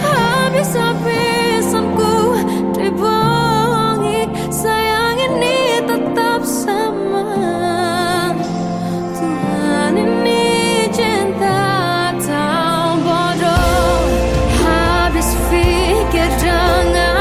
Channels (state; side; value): identical; both; correlation 1.00